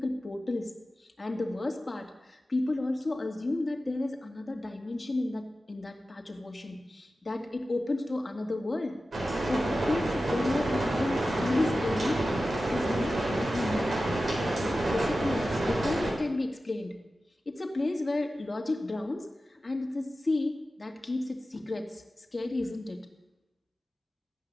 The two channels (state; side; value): normal; both; correlation 0.94